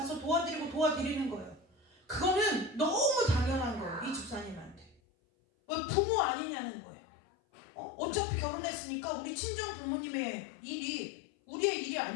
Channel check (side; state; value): right; drops out; at 5.0 s